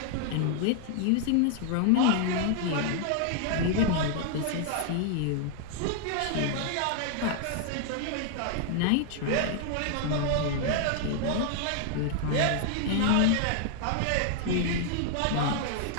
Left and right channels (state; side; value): different; both; correlation 0.00